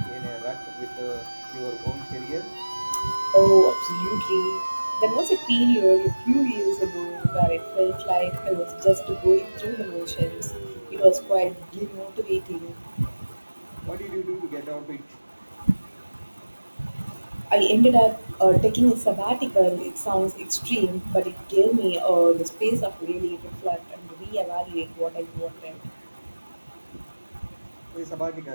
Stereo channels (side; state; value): both; inverted; correlation -1.00